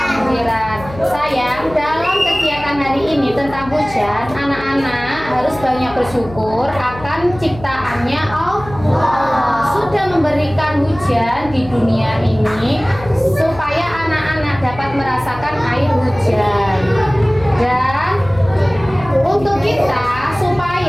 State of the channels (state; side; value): noise; left; hum, 15 dB below the sound